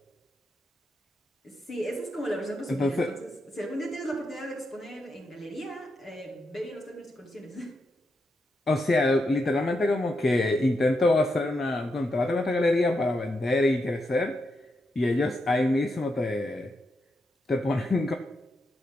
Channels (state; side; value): normal; both; correlation 0.84